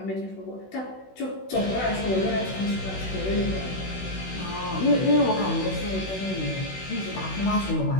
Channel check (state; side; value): late; right; 16 ms